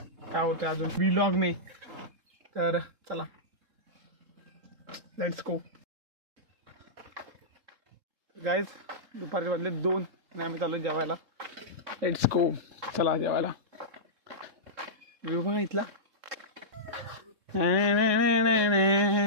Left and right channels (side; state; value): left; late; 3.7 ms